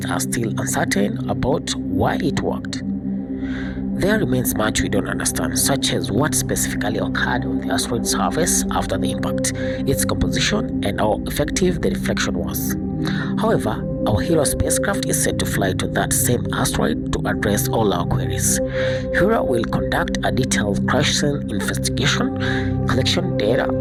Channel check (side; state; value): both; identical; correlation 1.00